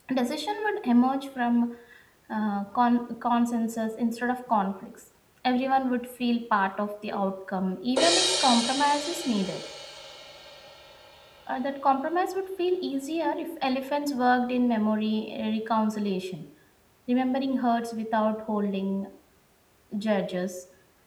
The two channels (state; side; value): identical; both; correlation 1.00